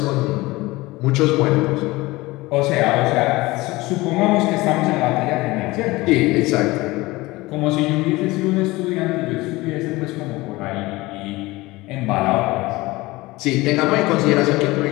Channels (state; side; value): quieter; right; 20.7 dB